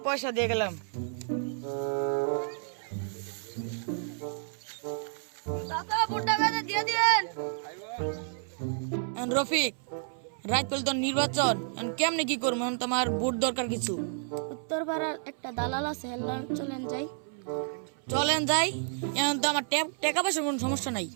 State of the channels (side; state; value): left; silent; 57 dB below the other